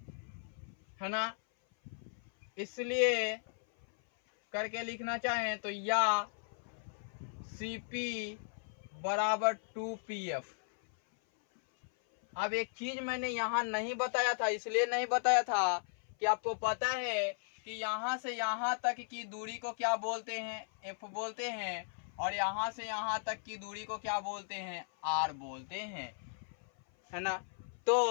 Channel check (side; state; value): right; silent; 54 dB below the other